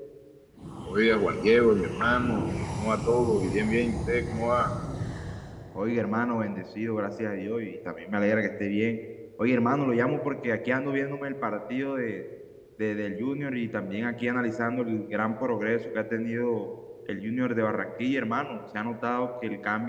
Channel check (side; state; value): both; identical; correlation 1.00